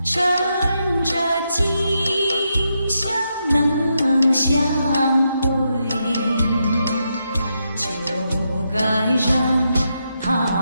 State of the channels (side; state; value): both; inverted; correlation -0.83